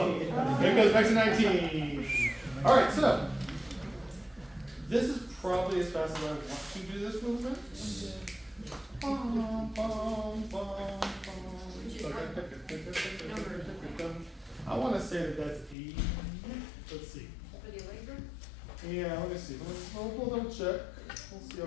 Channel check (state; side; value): drops out; right; at 15.8 s